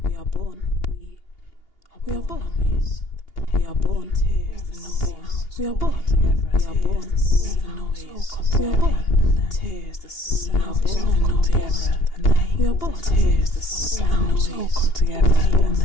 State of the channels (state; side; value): late; right; 2.8 ms